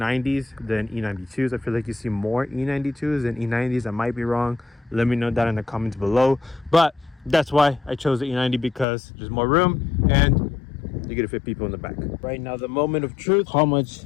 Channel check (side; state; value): right; drops out; at 8.8 s